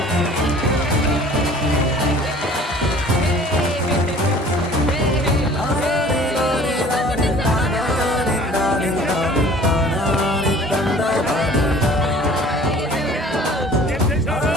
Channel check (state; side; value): normal; both; correlation 0.49